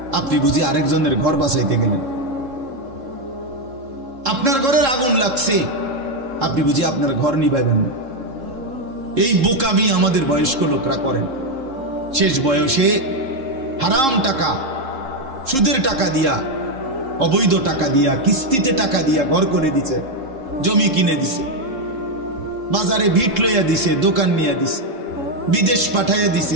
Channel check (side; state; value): left; late; 3.7 ms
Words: আপনি বুঝি আরেকজনের ঘর বাঁচাইতে গেলেন। আপনার ঘরের আগুন লাগছে, আপনি বুঝি আপনার ঘর নিভাইবেন না। এই বোকামি আমাদের বয়স্ক লোকরা করেন। শেষ বয়সে হারাম টাকা, সুদের টাকা দিয়া, অবৈধ টাকা দিয়া, কিস্তিতে টাকা দিয়া ঘর করে দিছে, জমি কিনে দিছে, বাজারে ভিট লইয়া দিছে, দোকান নিয়ে দিছে, বিদেশ পাঠাইয়া দিছে,